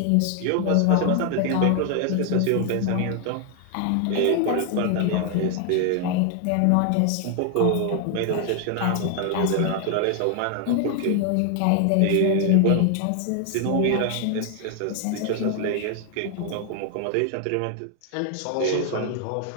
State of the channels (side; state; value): both; different; correlation 0.00